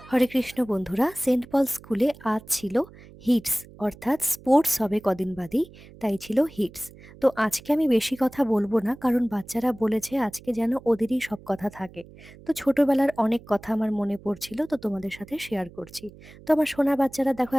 হরে কৃষ্ণ বন্ধুরা, সেন্ট পল স্কুলে আজ ছিল হিটস, অর্থাৎ স্পোর্টস হবে কদিন বাদেই, তাই ছিল হিটস। তো আজকে আমি বেশি কথা বলবো না, কারণ বাচ্চারা বলেছে আজকে যেন ওদেরই সব কথা থাকে। তো ছোটবেলার অনেক কথা আমার মনে পড়ছিল, তো তোমাদের সাথে শেয়ার করছি। তো আমার সোনা বাচ্চারা দেখো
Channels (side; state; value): right; noise; hum, 21 dB below the sound